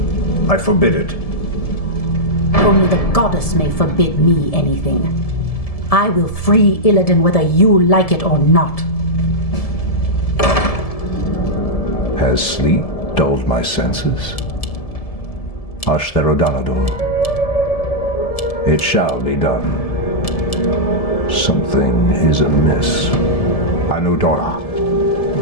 I forbid it. Only the goddess may forbid me anything. I will free Illidan whether you like it or not. Has sleep dulled my senses? Ashtherodanador. It shall be done. Something is amiss. Anudora.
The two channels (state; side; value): late; right; 1.7 ms